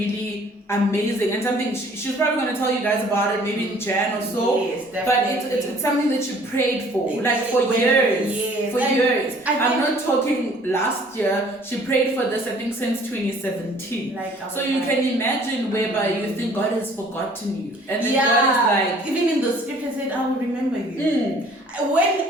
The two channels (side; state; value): both; normal; correlation 0.55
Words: amazing, and something she's probably going to tell you guys about it maybe in Jan or so. Yes, but it's something that you prayed for, like for years. Yes. For years. I'm not talking last year. She prayed for this, I think, since 2017. So you can imagine whereby you think God has forgotten you, and then God is like, even in the scripture said, I will remember you.